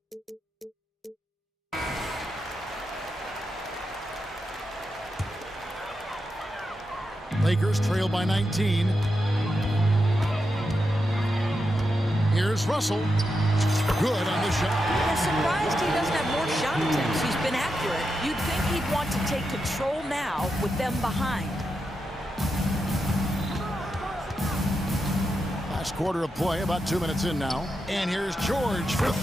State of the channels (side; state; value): both; normal; correlation 0.87